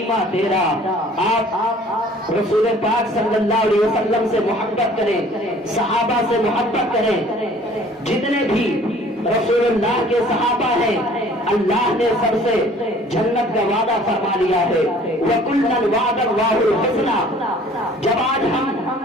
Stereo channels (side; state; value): both; normal; correlation 0.52